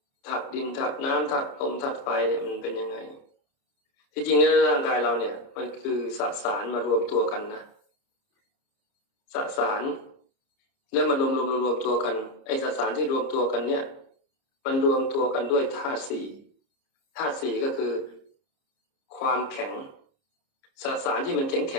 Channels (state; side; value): late; right; 30 ms